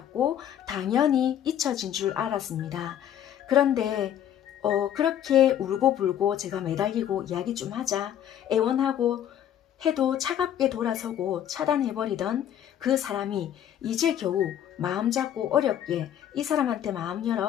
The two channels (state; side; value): quieter; right; 10.3 dB